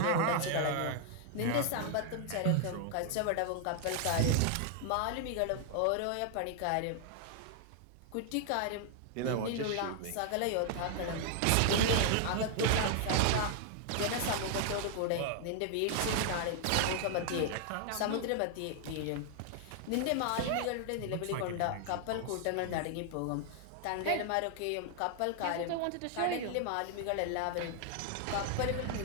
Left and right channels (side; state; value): both; different; correlation 0.00